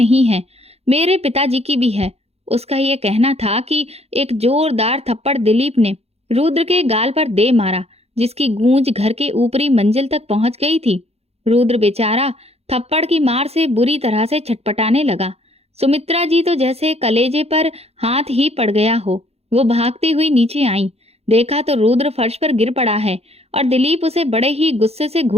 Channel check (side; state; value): left; late; 0.30 ms